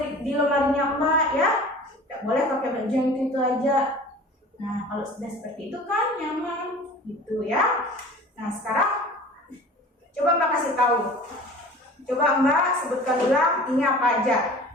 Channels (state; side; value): normal; both; correlation 0.42